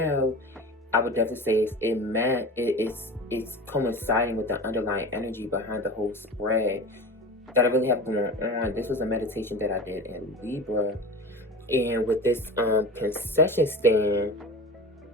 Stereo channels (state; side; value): normal; both; correlation 0.33